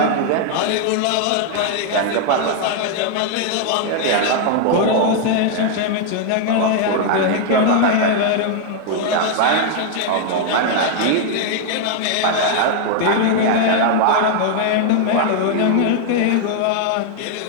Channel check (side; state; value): both; different; correlation 0.00